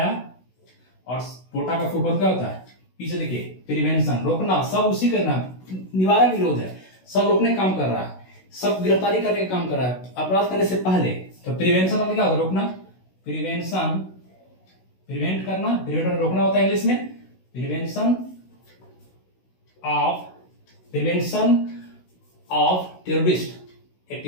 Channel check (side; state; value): right; late; 16 ms